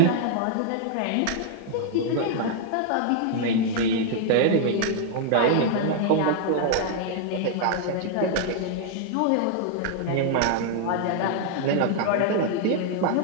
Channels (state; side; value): different; both; correlation 0.00